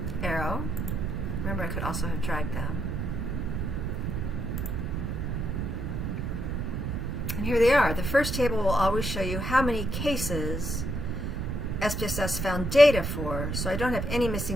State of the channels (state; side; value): noise; right; rumble, 2 dB below the sound